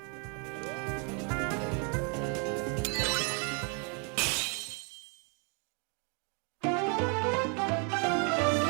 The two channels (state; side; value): quieter; left; 36.3 dB